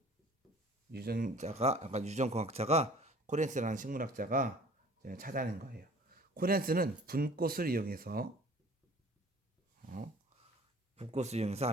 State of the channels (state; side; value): normal; both; correlation 0.49